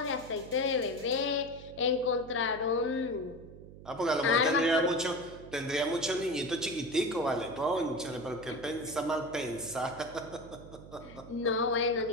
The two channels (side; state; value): right; noise; hum, 17 dB below the sound